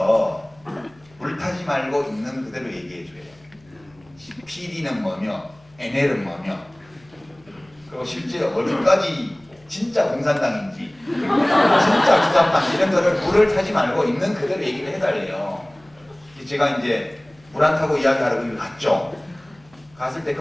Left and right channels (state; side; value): noise; left; hum, 29 dB below the sound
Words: 불타지 말고 있는 그대로 얘기해 줘요. PD는 뭐며 NL은 뭐며 그리고 실제 어디까지 진짜 공산당인지 진짜 주사파인지 이런 거를 불을 타지 말고 있는 그대로 얘기를 해달래요. 제가 이제 물 안 타고 이야기하러 거기 갔죠. 갔을 때